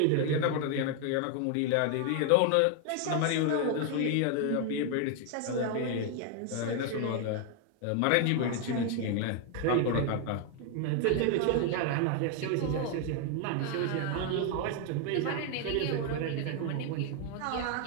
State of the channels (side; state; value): both; different; correlation 0.01